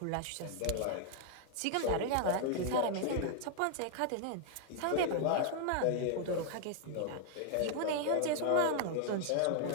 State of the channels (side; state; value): both; different; correlation 0.00